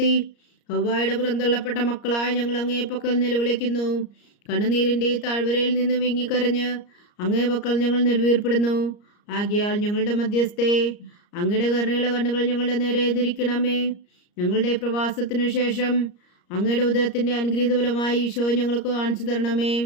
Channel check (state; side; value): late; right; 34 ms